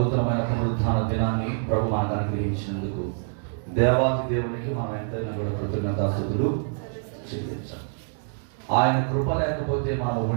పునరుత్థాన దినాన్ని ప్రభు మనకు అనుగ్రహించినందుకు దేవాది దేవునికి మనం ఎంతైనా కూడా కృతజ్ఞతాస్తుతులు చెల్లించాలి. ఆయన కృప లేకపోతే మనం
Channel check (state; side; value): silent; left; 61 dB below the other